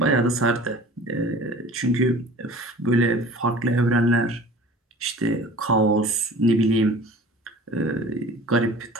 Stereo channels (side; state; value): both; normal; correlation 0.44